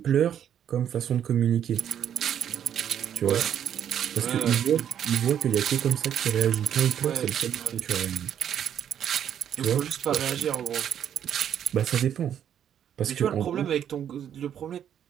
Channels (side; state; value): left; quieter; 9.5 dB